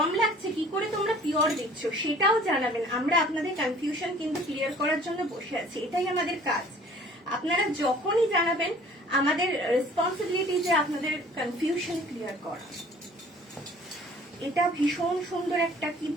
লাগছে, কি করে তোমরা পিওর দিচ্ছ সেটাও জানাবেন। আমরা আপনাদের কনফিউশন কিন্তু ক্লিয়ার করার জন্য বসে আছি, এটাই আমাদের কাজ। আপনারা যখনই জানাবেন, আমাদের রেসপন্সিবিলিটি যে আপনাদের কনফিউশন ক্লিয়ার করা। এটা ভীষণ সুন্দর একটা, কি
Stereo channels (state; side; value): normal; both; correlation 0.52